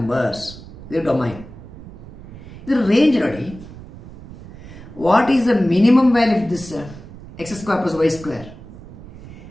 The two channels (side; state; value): right; noise; rumble, 16 dB below the sound